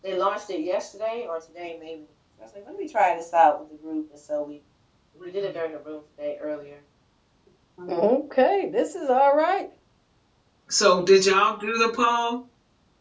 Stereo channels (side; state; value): both; identical; correlation 1.00